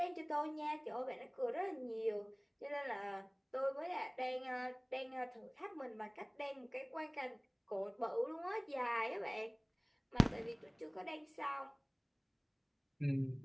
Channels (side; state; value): both; identical; correlation 1.00